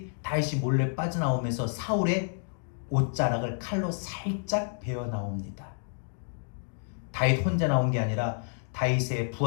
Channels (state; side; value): silent; right; digital silence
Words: 다윗이 몰래 빠져나오면서 사울의 옷자락을 칼로 살짝 베어 나옵니다. 다윗 혼자 나온 게 아니라 다윗의